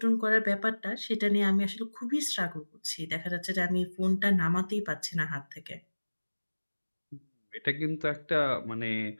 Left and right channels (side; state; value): both; inverted; correlation -1.00